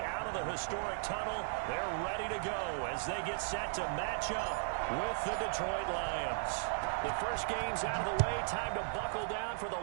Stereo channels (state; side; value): silent; left; digital silence